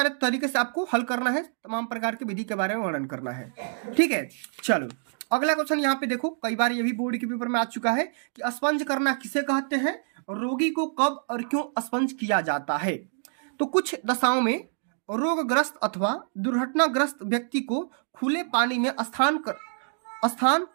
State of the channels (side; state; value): left; silent; digital silence